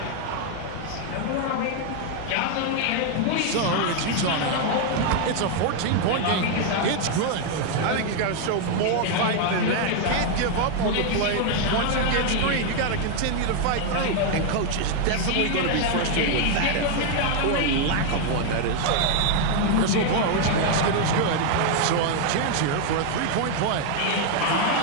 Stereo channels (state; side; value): different; both; correlation 0.00